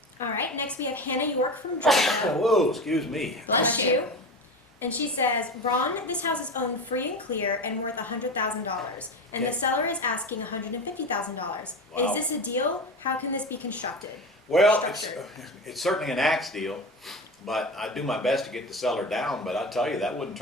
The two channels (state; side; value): normal; both; correlation 0.26